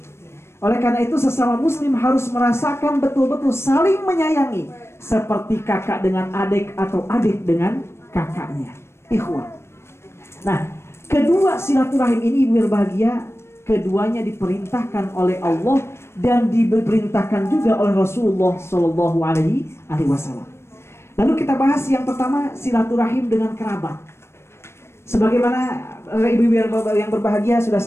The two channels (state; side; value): late; right; 0.12 ms